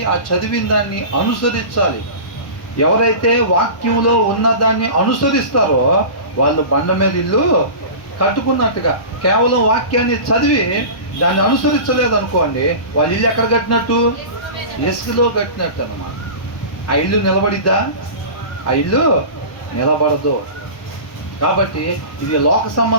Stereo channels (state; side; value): late; right; 1.1 ms